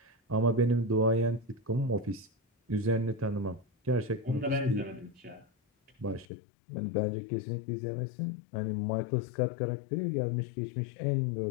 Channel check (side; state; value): right; drops out; at 6.2 s